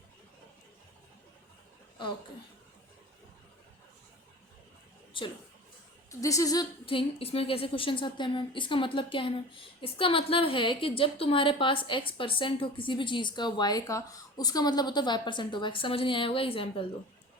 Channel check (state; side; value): normal; both; correlation 0.37